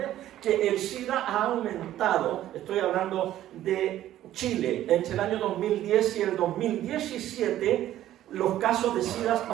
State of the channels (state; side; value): quieter; left; 13.0 dB